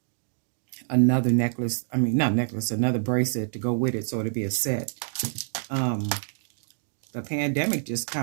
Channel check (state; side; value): silent; left; digital silence